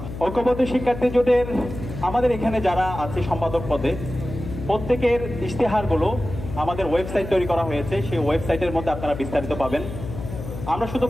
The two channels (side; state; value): left; noise; hum, 9 dB below the sound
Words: ঐক্যবদ্ধ শিক্ষার্থী জোটের আমাদের এখানে যারা আছে সম্পাদক পদে, প্রত্যেকের ইশতেহারগুলো আমাদের ওয়েবসাইট তৈরি করা হয়েছে। সেই ওয়েবসাইটের মধ্যে আপনারা বিস্তারিত পাবেন। আমরা শুধু